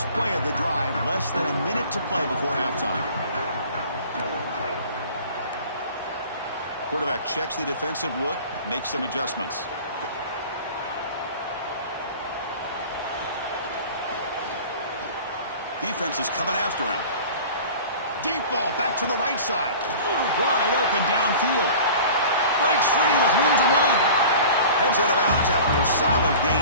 play of the drive, less than a minute to play before halftime. Quarterback checks the defensive look, makes some adjustments. Defense is coming after him. Deep ball back to the right side. Wide open downfield. Breaks free with room to run. Heads out of bounds after a solid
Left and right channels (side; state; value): both; inverted; correlation -0.41